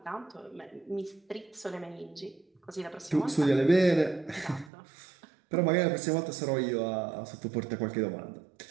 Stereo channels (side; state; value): left; drops out; at 4.7 s